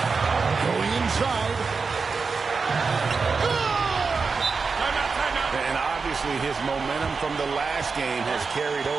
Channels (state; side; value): quieter; left; 4.8 dB